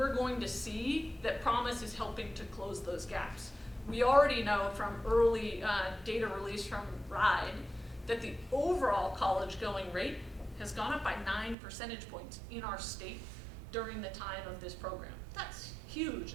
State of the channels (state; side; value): drops out; left; at 11.6 s